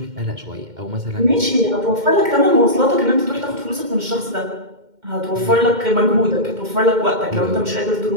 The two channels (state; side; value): late; left; 2.1 ms